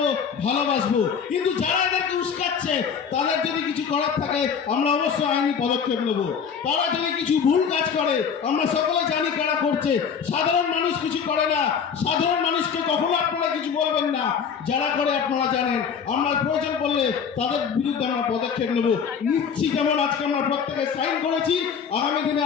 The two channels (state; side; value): quieter; right; 6.8 dB